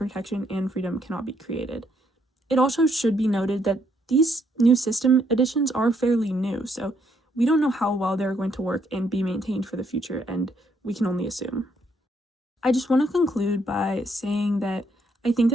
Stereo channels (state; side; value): normal; both; correlation 0.72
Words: and freedom cannot be created. It also should be noted that these new system additions are fairly new, so we don't know how well they're going to work and be maintained for the future, and we can only assume. I just want to conclude by saying that I think